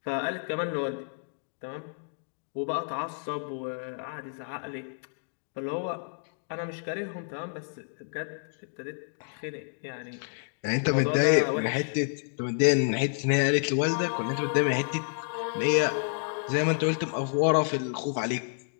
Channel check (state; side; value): silent; right; digital silence